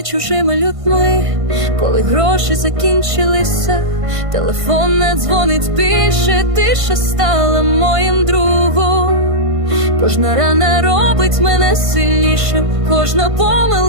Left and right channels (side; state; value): left; late; 1.5 ms